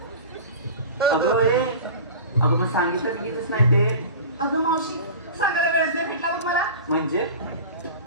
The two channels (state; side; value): inverted; both; correlation -0.35